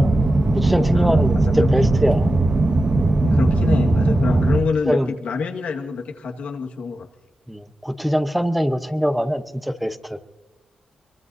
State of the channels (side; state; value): both; normal; correlation 0.92